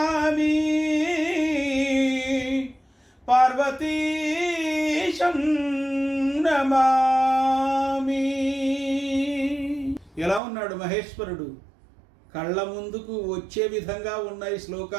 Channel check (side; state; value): left; drops out; at 10.4 s